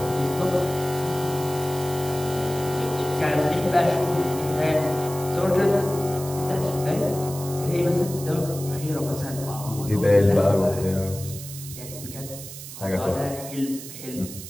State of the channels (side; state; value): right; noise; hiss, 12 dB below the sound